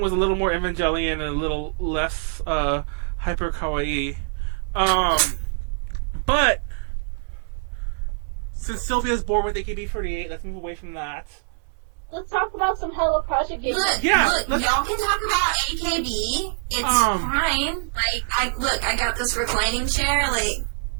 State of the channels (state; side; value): silent; left; 63 dB below the other